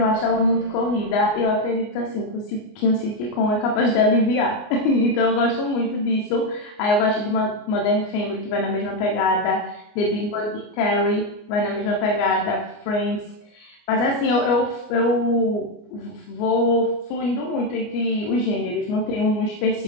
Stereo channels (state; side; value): late; right; 29 ms